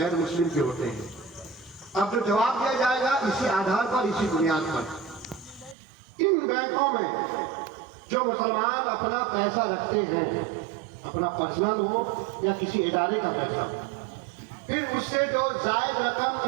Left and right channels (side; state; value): left; drops out; at 5.8 s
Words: मुस्लिम के होते हैं। अब जो जवाब दिया जाएगा इसी आधार पर, इसी बुनियाद पर। इन बैंकों में जो मुसलमान अपना पैसा रखते हैं, अपना पर्सनल हो या किसी इदारे का पैसा, फिर उससे जो जायद रकम